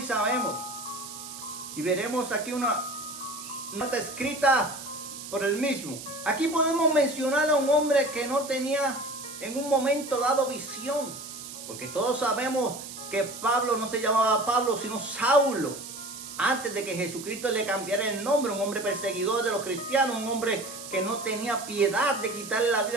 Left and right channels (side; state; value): right; noise; hiss, 11 dB below the sound